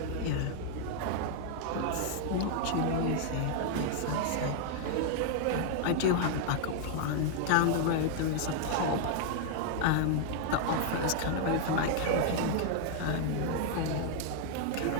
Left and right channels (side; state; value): both; different; correlation -0.01